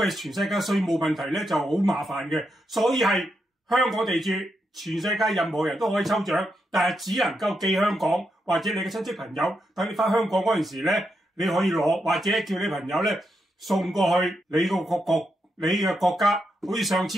全世界稅務問題咧就好麻煩嘅，所以係香港地址，全世界任何人都可以抽獎，但係只能夠寄香港，或者你嘅親戚朋友等你翻香港嗰陣時咧，你可以攞，或者叫你朋友咧送過去你嘅國家。好似上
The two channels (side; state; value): both; normal; correlation 0.83